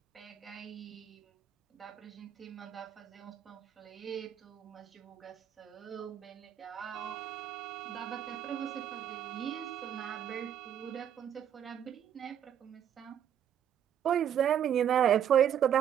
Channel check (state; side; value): quieter; left; 9.5 dB